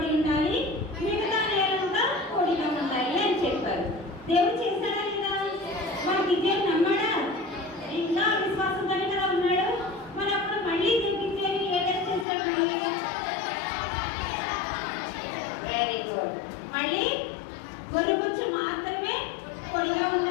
ఉండాలి, మిగతా నేలంతా పొడిగా ఉండాలి అని చెప్పారు. దేవుడు చేశాడా లేదా? మరి గిద్యోను నమ్మాడా? ఇంకా విశ్వాసంతోనే కదా ఉన్నాడు. మరి అప్పుడు మళ్ళీ గిద్యోను ఏ టెస్ట్ చేశాడు? Very good. మళ్ళీ ఒలికొచ్చి మాత్రమే పొడిగా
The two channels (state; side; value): drops out; right; at 12.2 s